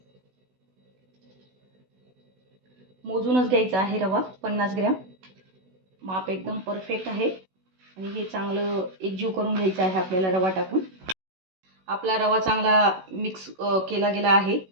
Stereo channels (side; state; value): left; late; 16 ms